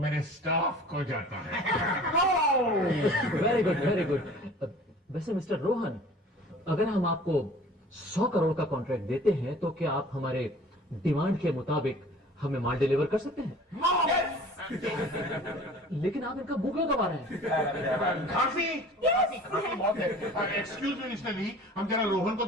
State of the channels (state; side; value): normal; both; correlation 0.46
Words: स्टाफ को जाता है। Very good. वैसे मिस्टर रोहन, अगर हम आपको 100 करोड़ का कॉन्ट्रैक्ट देते हैं तो क्या आप हमारे डिमांड के मुताबिक हमें माल डिलीवर कर सकते हैं? लेकिन आप इनका मुंह क्यों दबा रहे हैं? खांसी बहुत है। एक्सक्यूज मी मिस्टर ली, हम जरा रोहन को